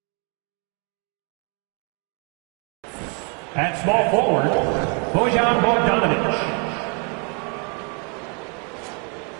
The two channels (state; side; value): quieter; left; 33.3 dB